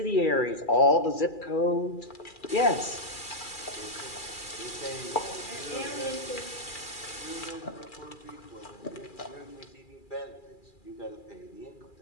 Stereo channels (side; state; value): right; late; 2.4 ms